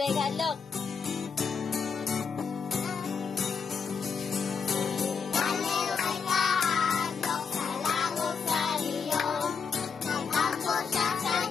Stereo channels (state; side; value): quieter; right; 5.9 dB